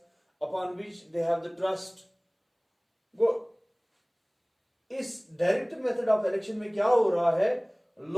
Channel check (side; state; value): both; identical; correlation 1.00